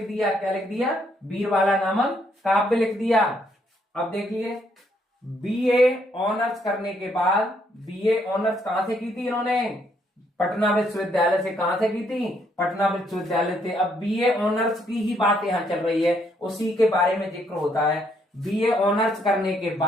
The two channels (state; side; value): normal; both; correlation 0.71